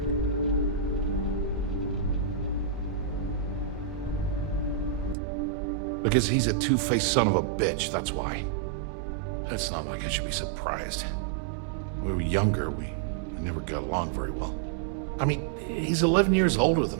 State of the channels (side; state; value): left; drops out; at 5.2 s